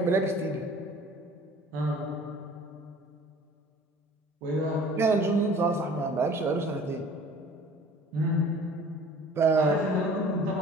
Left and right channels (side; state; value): both; normal; correlation 0.49